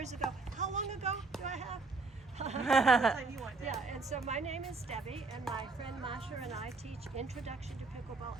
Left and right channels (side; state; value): left; quieter; 3.7 dB